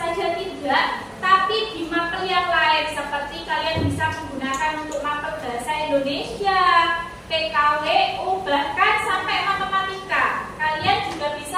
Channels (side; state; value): both; identical; correlation 1.00